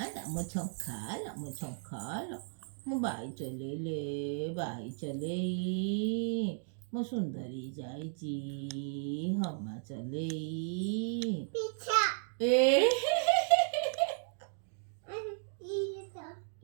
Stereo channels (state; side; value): silent; left; digital silence